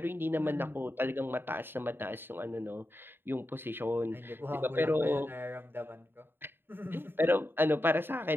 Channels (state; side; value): late; left; 0.10 ms